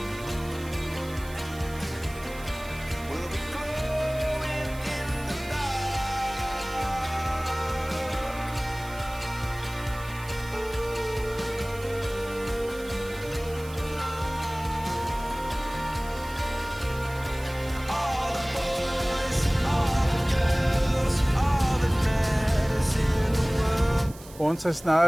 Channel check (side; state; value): right; noise; hiss, 19 dB below the sound